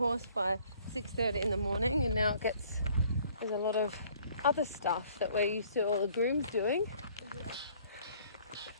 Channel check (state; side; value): inverted; both; correlation -0.58